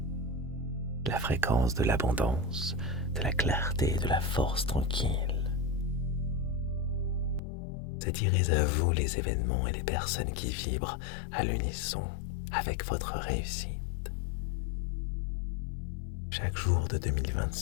La fréquence de l'abondance, de la clarté et de la force tranquille. Attirez à vous les événements et les personnes qui vibrent à l'unisson avec votre réussite. Chaque jour de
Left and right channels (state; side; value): drops out; right; at 7.4 s